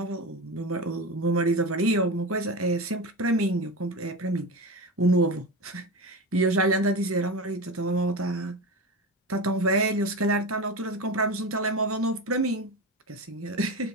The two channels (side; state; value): both; normal; correlation 0.23